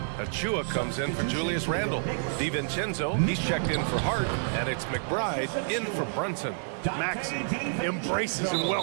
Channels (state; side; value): silent; left; digital silence